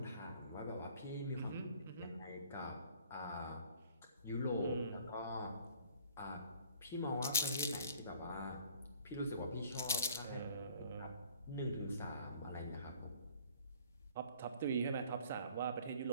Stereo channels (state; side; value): inverted; both; correlation -0.53